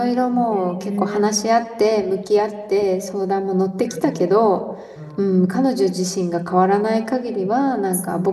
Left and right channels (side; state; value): both; identical; correlation 1.00